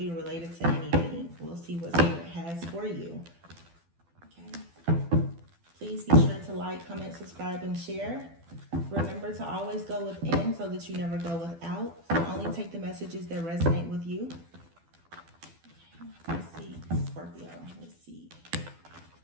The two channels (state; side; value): late; left; 12 ms